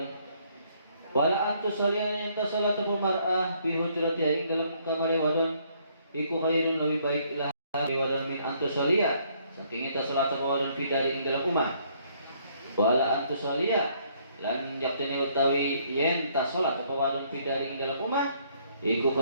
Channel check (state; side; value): inverted; both; correlation -0.66